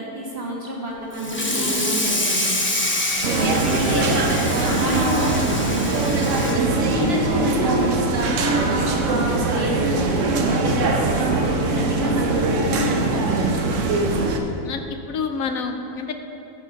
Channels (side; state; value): both; normal; correlation 0.00